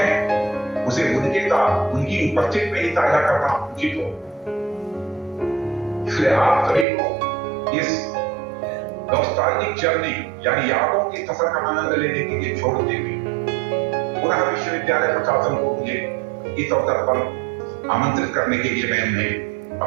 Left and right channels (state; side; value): drops out; left; at 6.9 s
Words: उसे उनके साथ उनकी उपस्थिति में ही साझा करना उचित हो। इसलिए आप सभी को इस नॉस्टैल्जिक जर्नी यानी यादों की सफर का आनंद लेने के लिए छोड़ते हुए पुनः विश्वविद्यालय प्रशासन को मुझे इस अवसर पर आमंत्रित करने के लिए मैं उन्हें